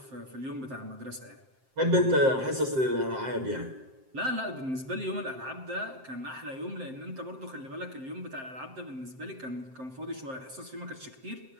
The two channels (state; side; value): late; left; 7.6 ms